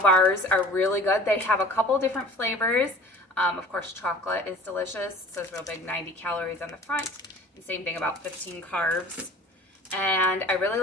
are really good. They have a couple different flavors. Of course, chocolate is delicious. It says real big 90 calories on the front, and same thing about 15 carbs. And I really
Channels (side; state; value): both; normal; correlation 0.44